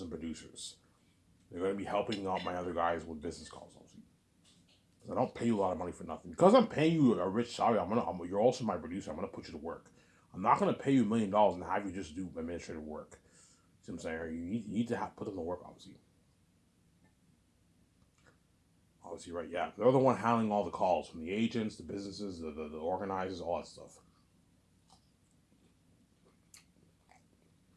producers. They're going to be helping out my other guys with business calls, obviously. I don't pay you a lot of money for nothing. Because I'm paying you a rich salary, you're also my producer. I'm going to put you to work. I'm not going to pay you $1 million and have you just do administrative work. See what I'm saying? You need to put them to work, obviously. Obviously, right? Yeah, they're the one handling all the calls from the agents, the businesses, the organizers, all that stuff.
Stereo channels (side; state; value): both; identical; correlation 1.00